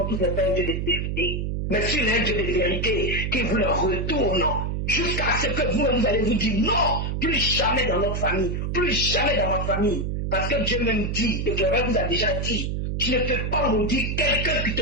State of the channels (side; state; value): right; noise; hum, 1 dB below the sound